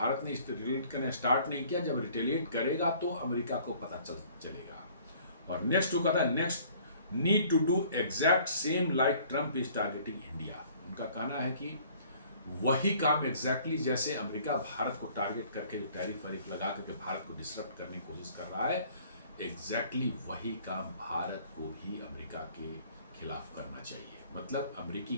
ने रिटेलिएट करना स्टार्ट नहीं किया, जब रिटेलिएट करेगा तो अमेरिका को पता चलेगा। और नेक्स्ट वो कहता है next need to do exact same like Trump is targeting India. उनका कहना है कि वही काम एग्जैक्टली जैसे अमेरिका भारत को टारगेट करके जो टैरिफ वैरिफ लगा करके भारत को डिसरप्ट करने की कोशिश कर रहा है, एग्जैक्टली वही काम भारत को भी अमेरिका के खिलाफ करना चाहिए। मतलब अमेरिकी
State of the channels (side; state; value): both; inverted; correlation -0.55